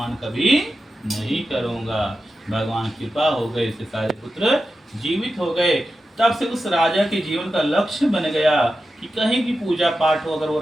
कभी नहीं करूंगा। भगवान कृपा हो गई, इसके सारे पुत्र जीवित हो गए। तब से उस राजा के जीवन का लक्ष्य बन गया कि कहीं भी पूजा पाठ हो, अगर वो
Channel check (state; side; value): normal; both; correlation 0.91